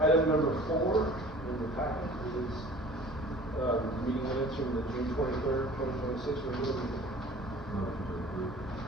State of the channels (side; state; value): both; normal; correlation 0.46